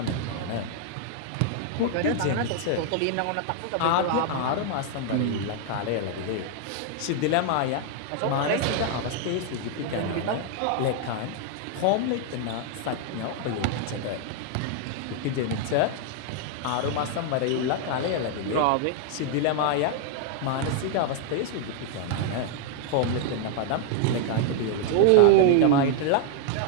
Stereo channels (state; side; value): different; both; correlation 0.00